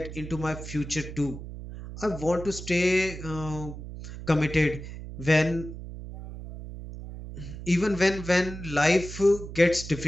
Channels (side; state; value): right; noise; hum, 11 dB below the sound